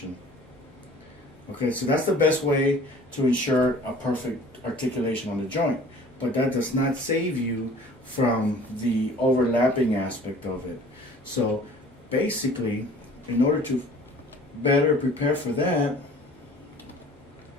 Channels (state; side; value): normal; both; correlation 0.48